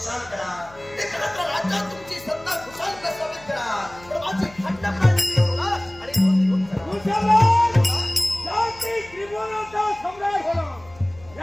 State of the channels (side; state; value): left; noise; hum, 23 dB below the sound